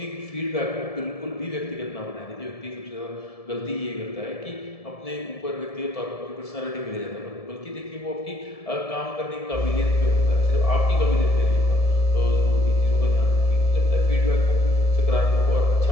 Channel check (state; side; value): late; right; 1.7 ms